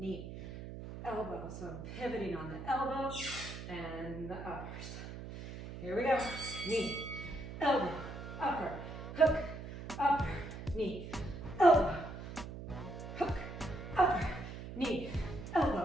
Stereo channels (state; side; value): noise; right; hum, 10 dB below the sound